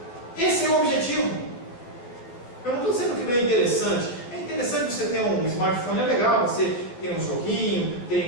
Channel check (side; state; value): right; late; 12 ms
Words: Esse é o objetivo. Eu não estou dizendo que não é interessante. É interessante você ter um smartphone, é legal, você tem um joguinho,